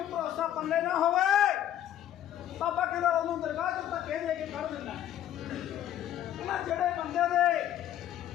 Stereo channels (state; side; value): quieter; right; 11.5 dB